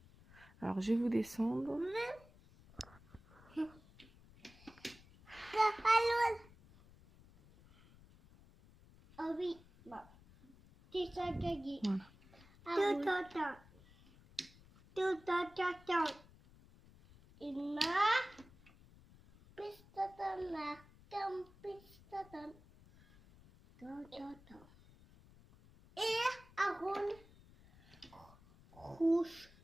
Alors, je vais vous descendre. Ah oui. C'est ça gagné. Voilà. Tout. Une marque. Pistaton, marque, pistaton. Et un rôle rouge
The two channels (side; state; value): left; noise; rumble, 24 dB below the sound